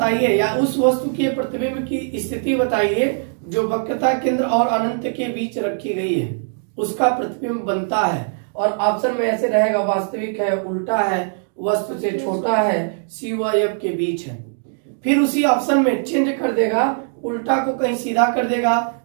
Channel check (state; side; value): silent; left; digital silence